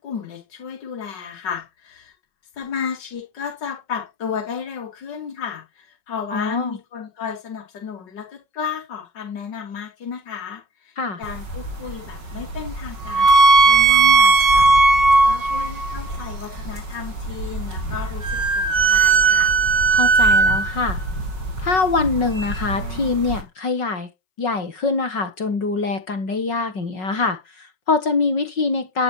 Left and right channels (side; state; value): right; late; 5.4 ms